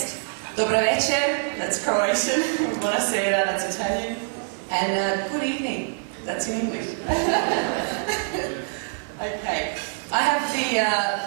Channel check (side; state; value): left; silent; digital silence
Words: Dobar večer, that's Croatian. Buonasera, that's Italian. And good evening, that's in English. Okay, I